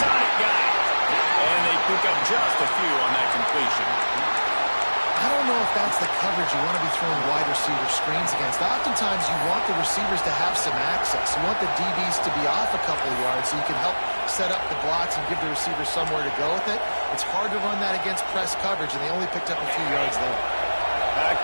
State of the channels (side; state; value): both; inverted; correlation -1.00